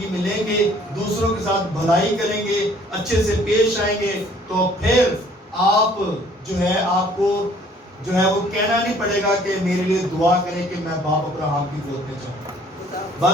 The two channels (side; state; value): both; normal; correlation 0.57